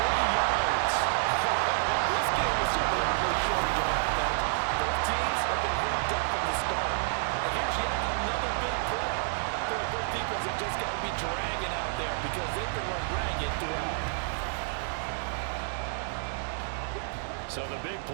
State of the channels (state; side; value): silent; left; digital silence